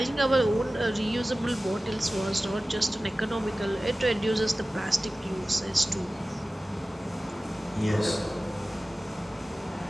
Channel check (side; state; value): both; normal; correlation 0.96